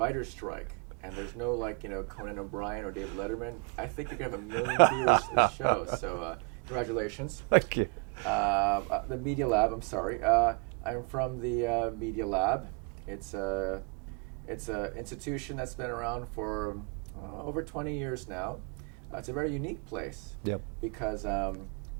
strike, and there's no Conan O'Brien or David Letterman. I think you're going to have 1 million viewers to this show, so congratulations. Thank you. The Media Lab, I'm sorry. I'm from the Media Lab. It's a institution that's been around for over 20 years now. It's a very unique place. Yep. Because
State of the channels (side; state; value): left; quieter; 33.5 dB